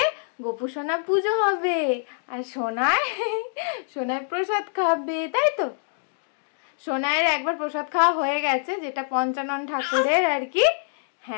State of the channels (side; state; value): right; silent; digital silence